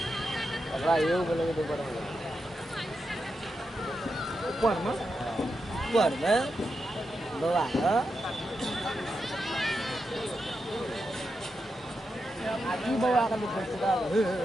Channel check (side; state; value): both; normal; correlation 0.87